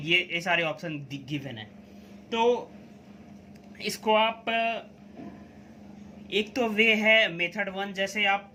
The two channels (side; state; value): both; identical; correlation 1.00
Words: सारे option given है। तो इसको आप, एक तो वे है मेथड 1, जैसे आप